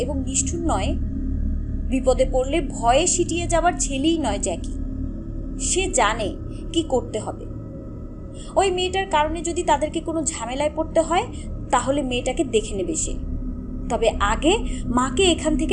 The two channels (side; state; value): both; identical; correlation 1.00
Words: নিষ্ঠুর নয়। বিপদে পড়লে ভয়ে সিটিয়ে যাবার ছেলেই নয় জ্যাকি। সে জানে কি করতে হবে। ওই মেয়েটার কারণে যদি তাদেরকে কোনো ঝামেলায় পড়তে হয়, তাহলে মেয়েটাকে দেখে নেবে সে। তবে আগে মাকে এখান